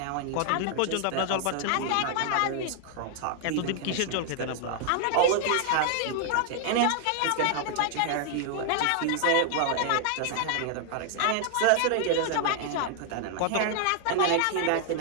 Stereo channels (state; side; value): different; both; correlation 0.00